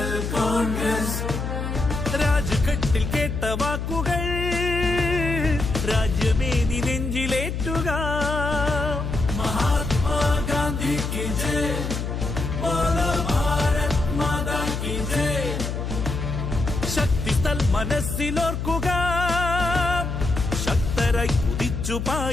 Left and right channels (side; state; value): left; noise; hum, 3 dB below the sound